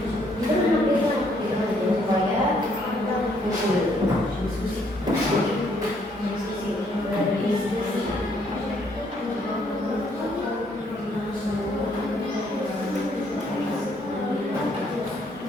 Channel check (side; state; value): both; normal; correlation 0.68